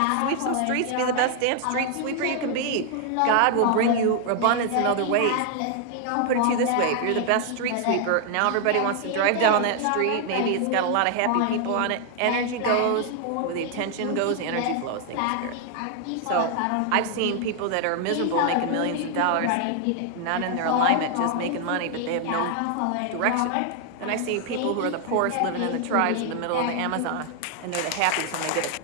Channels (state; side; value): different; both; correlation 0.00